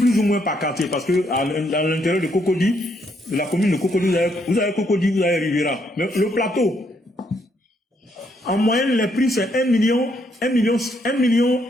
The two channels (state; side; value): normal; both; correlation 0.73